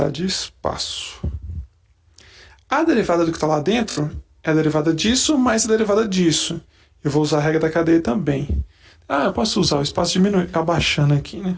de espaço. A derivada do que está lá dentro é a derivada disso mais a derivada disso. Eu vou usar a regra da cadeia também. Ah, eu posso usar o espaço diminuindo, abaixando aqui, né?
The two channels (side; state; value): both; identical; correlation 1.00